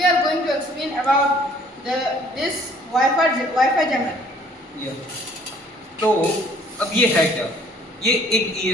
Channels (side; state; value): both; normal; correlation 0.58